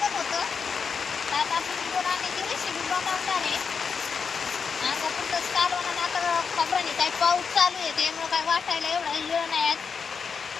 काय पाऊस चालू आहे त्यामुळे काय वाटायला एवढा वेळ नाही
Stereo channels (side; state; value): right; quieter; 5.8 dB